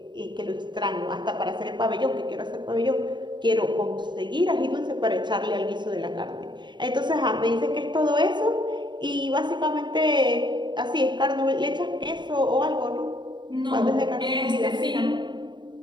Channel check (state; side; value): late; left; 0.22 ms